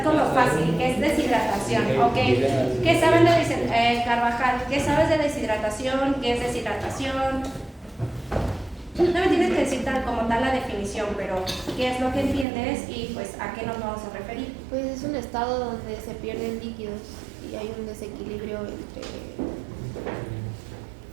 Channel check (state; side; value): drops out; left; at 12.5 s